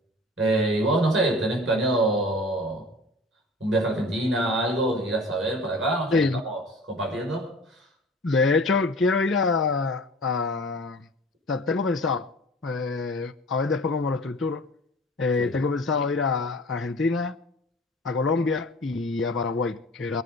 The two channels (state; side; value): normal; both; correlation 0.42